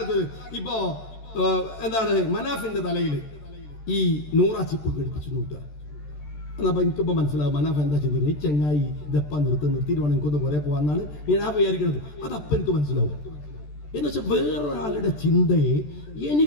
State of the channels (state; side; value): late; right; 14 ms